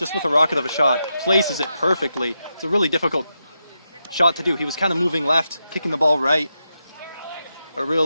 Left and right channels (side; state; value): both; inverted; correlation -0.86